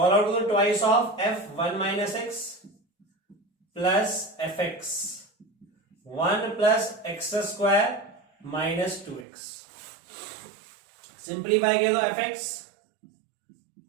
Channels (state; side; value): drops out; left; at 9.2 s